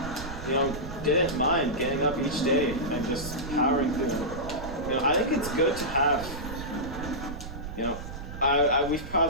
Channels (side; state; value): right; noise; rumble, 10 dB below the sound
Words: didn't mind getting up each day and just powering through. I think it's good to have, we've